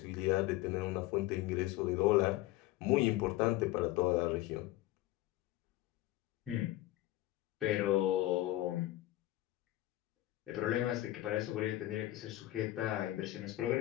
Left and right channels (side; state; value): right; quieter; 16.3 dB